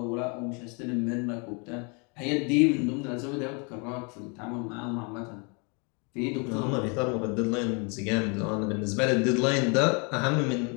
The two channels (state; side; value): quieter; right; 33.9 dB